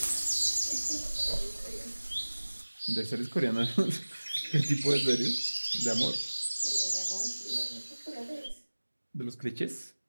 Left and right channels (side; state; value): both; inverted; correlation -1.00